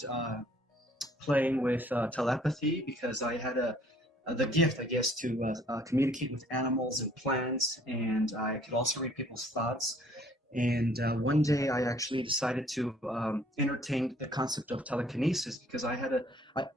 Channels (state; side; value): normal; both; correlation 0.59